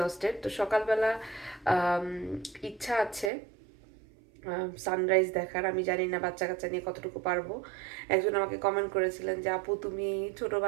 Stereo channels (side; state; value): left; drops out; at 3.3 s